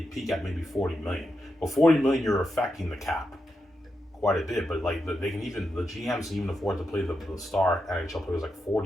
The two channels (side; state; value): both; normal; correlation 0.86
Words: peak at maybe 40 million. But 40 million, you're affecting the cap quite a bit. But like the GMs can even afford to play the star NHL players like